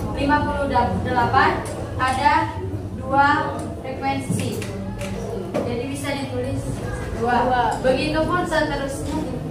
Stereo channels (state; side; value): identical; both; correlation 1.00